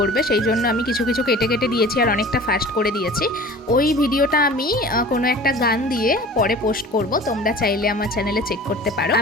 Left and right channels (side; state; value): both; normal; correlation 0.42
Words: করবে, সেই জন্য আমি কিছু কিছু কেটে কেটে দিয়েছি আর অনেকটা ফাস্ট করে দিয়েছি। ওই ভিডিওটা আমি কোনো একটা গান দিয়ে পরে পোস্ট করব, তোমরা চাইলে আমার চ্যানেলে চেক করতে পারো।